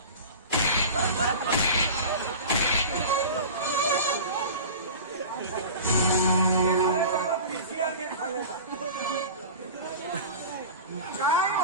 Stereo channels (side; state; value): both; inverted; correlation -0.34